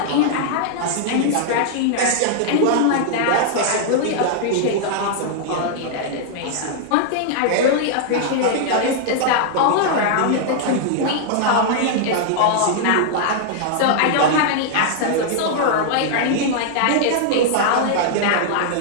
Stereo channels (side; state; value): both; different; correlation -0.01